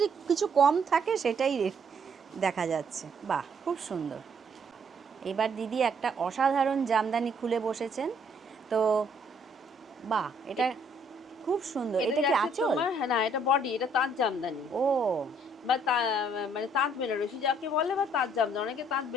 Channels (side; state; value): both; normal; correlation 0.66